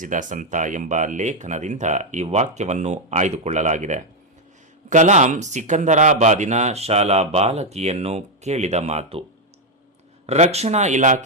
ಸಂತ ಎಂಬ ಲೇಖನದಿಂದ ಈ ವಾಕ್ಯವನ್ನು ಆಯ್ದುಕೊಳ್ಳಲಾಗಿದೆ. ಕಲಾಂ ಸಿಕಂದರಾಬಾದಿನ ಶಾಲಾ ಬಾಲಕಿಯನ್ನು ಕೇಳಿದ ಮಾತು. ರಕ್ಷಣಾ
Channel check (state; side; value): normal; both; correlation 0.02